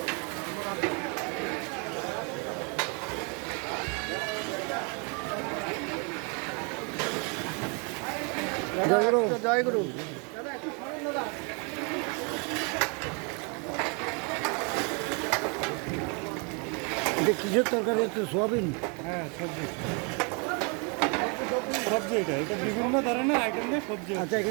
জয় গুরু জয় গুরু। এটা কিসের তরকারি হচ্ছে? সোয়াবিন? হ্যাঁ, সবজি সবজি এটা এটা বিভিন্ন ধরনের আইটেম দিয়ে সবজি। আচ্ছা,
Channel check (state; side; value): quieter; left; 34.8 dB